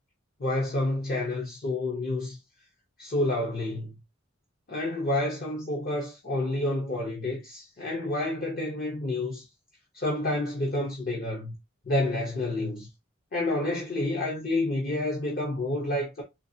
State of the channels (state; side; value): normal; both; correlation 0.49